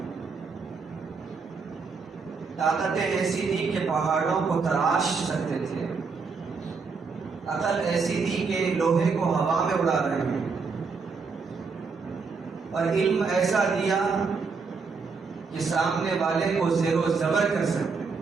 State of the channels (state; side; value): quieter; left; 4.9 dB